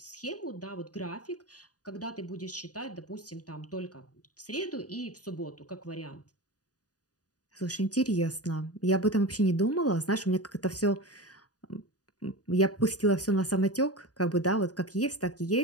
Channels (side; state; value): right; late; 0.68 ms